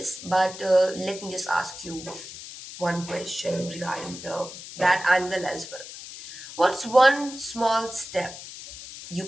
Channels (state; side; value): noise; left; hiss, 13 dB below the sound